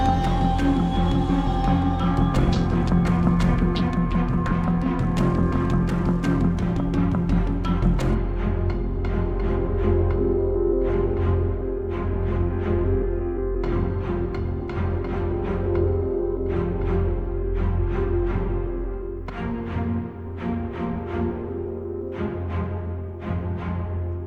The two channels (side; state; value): both; identical; correlation 1.00